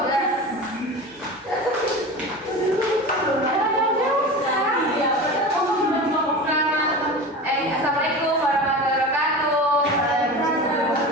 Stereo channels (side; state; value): both; normal; correlation 0.30